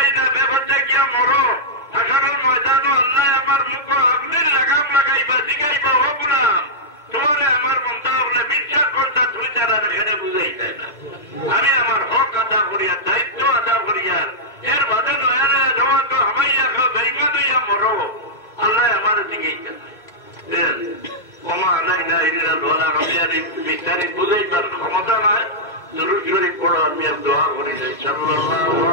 না ব্যাপারটা গিয়া মরো আসলের ময়দানও আল্লাহ আমার মুখ আপনি লাগাম লাগাইবা জিগাইবা হোক না তোমারে আমার মমতা হলে বিশ্বাস করতা তুমি তারা এখানে বুঝাই যায় না। আমি আমার হক আদা করিয়া দায়িত্ব আদা করিয়া এর বাদে নয়া নয়া জমা তো হামাইয়া খাও ভেঙ্গা দইয়া মরো আল্লাহ আমার জিগাইতে ওমা আল্লাহ আমি বিস্তারিত বুঝাইবার ক্ষমতা নয়। দুরূদ শরীফ পড়ো, আমি আর দোয়া করি সাল্লাল্লাহু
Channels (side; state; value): right; late; 2.1 ms